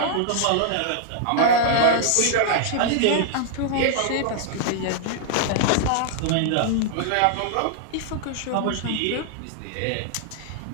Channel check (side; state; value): both; different; correlation -0.01